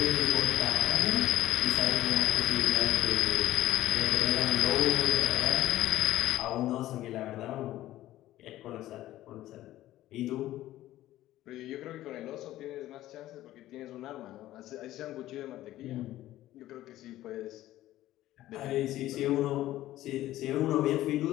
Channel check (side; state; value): right; quieter; 14.7 dB